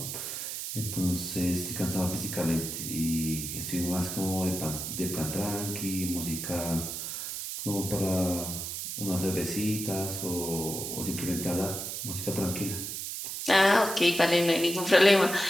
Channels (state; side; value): noise; right; hiss, 5 dB below the sound